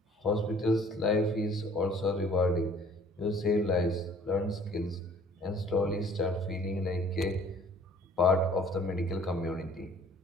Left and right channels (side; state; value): both; normal; correlation 0.54